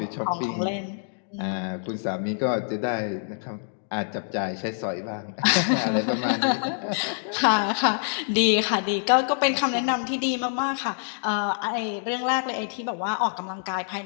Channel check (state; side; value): silent; right; digital silence